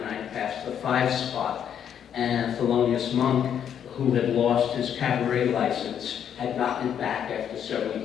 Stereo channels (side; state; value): right; quieter; 8.9 dB